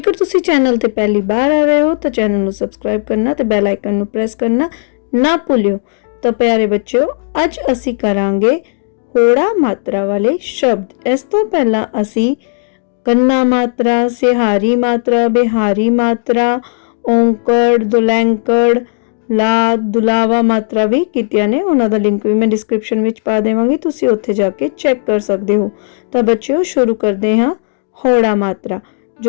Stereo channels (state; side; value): silent; right; digital silence